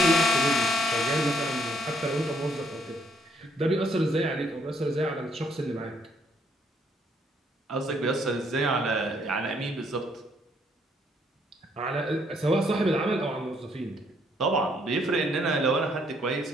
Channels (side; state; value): both; normal; correlation 0.69